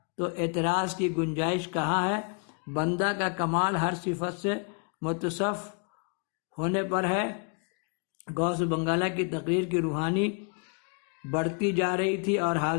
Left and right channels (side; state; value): right; quieter; 37.8 dB